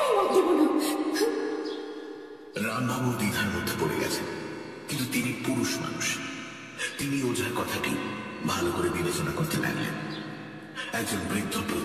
মত দেব না। রামবাবু দ্বিধার মধ্যে পড়ে গেছেন, কিন্তু তিনি পুরুষ মানুষ। তিনি ওঝার কথাটি ভালো করে বিবেচনা করতে লাগলেন। একজন বৃদ্ধ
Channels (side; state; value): both; identical; correlation 1.00